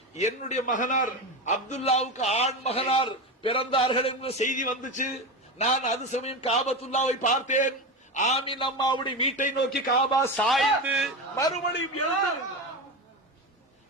என்னுடைய மகனார் அப்துல்லாவுக்கு ஆண் மகனார் பிறந்தார்கள் என்ற செய்தி வந்துச்சு. நான் அது சமயம் காபத்துல்லாவை பார்த்தேன். ஆமீன் அம்மாவுடைய வீட்டை நோக்கி காபா சாய்ந்து மறுபடியும் எழுந்து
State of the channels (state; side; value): normal; both; correlation 0.20